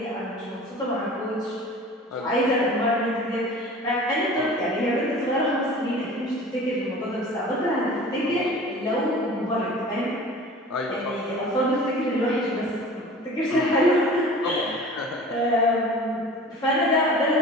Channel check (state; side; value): normal; both; correlation 0.41